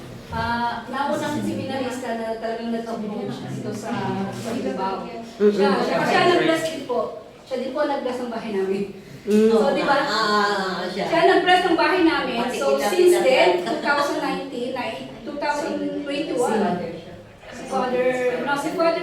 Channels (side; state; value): both; identical; correlation 1.00